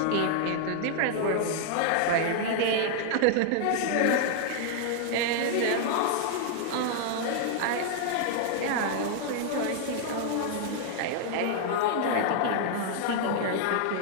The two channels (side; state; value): both; different; correlation -0.01